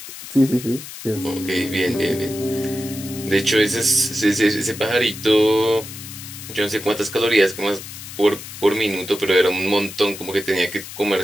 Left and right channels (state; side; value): noise; left; hiss, 12 dB below the sound